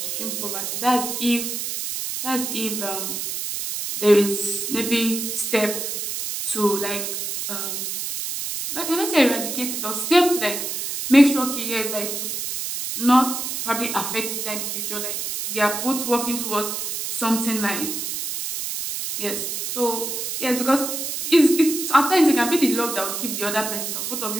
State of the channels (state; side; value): noise; right; hiss, 4 dB below the sound